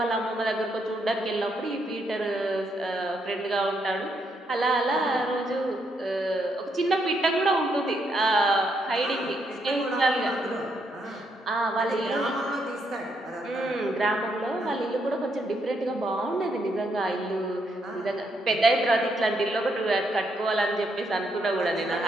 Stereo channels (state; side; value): normal; both; correlation 0.76